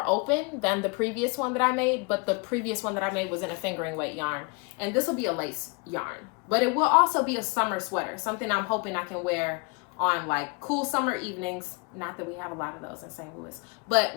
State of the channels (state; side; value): quieter; right; 31.5 dB